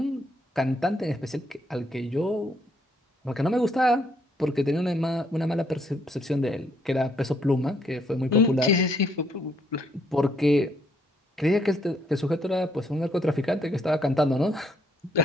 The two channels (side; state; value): both; normal; correlation 0.71